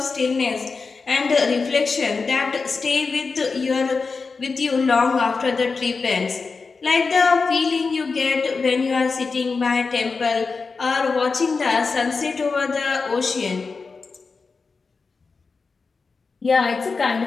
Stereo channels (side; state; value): right; quieter; 4.5 dB